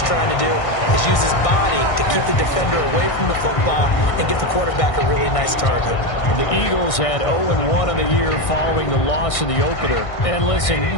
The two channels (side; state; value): right; late; 1.6 ms